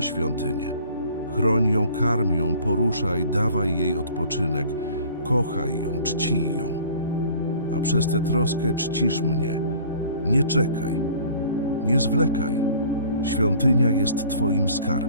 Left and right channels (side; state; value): both; inverted; correlation -0.50